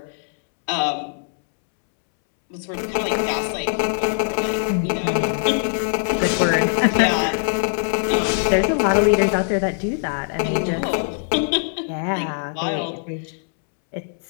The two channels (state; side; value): silent; right; 64 dB below the other